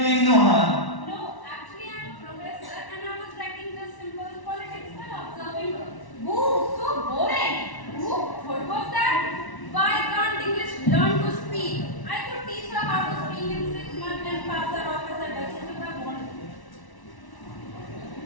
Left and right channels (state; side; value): late; right; 1.1 ms